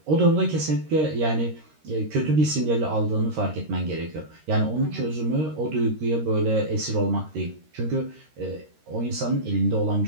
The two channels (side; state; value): left; late; 13 ms